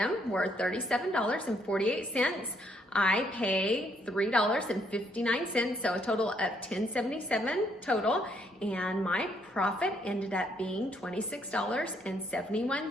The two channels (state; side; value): normal; both; correlation 0.70